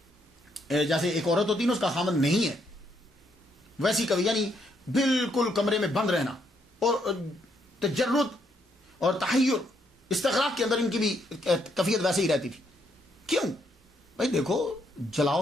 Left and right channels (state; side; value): normal; both; correlation 0.74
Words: جیسے ایک عورت ہوتی ہے نا اس کا خامن نہیں ہے، ویسی کبھی یعنی بالکل کمرے میں بند رہنا اور تجرد اور تحیر استغراق کے اندر ان کی بھی کیفیت ویسے ہی رہتی تھی. کیوں بھائی؟ دیکھو